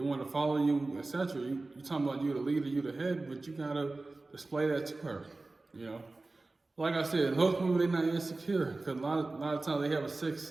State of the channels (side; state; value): left; quieter; 3.3 dB